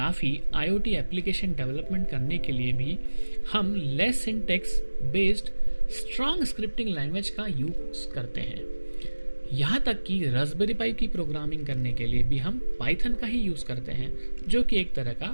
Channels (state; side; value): inverted; both; correlation -1.00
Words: IoT एप्लीकेशन डेवलपमेंट करने के लिए भी हम less syntax based strong scripting language का यूज करते हैं। यहाँ तक कि रास्पबेरी पाई की प्रोग्रामिंग करने के लिए भी हम पाइथन का ही यूज करते हैं, जो कि एक तरह का